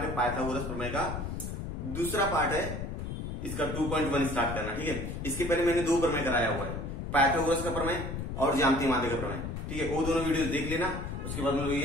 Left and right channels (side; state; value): left; noise; rumble, 5 dB below the sound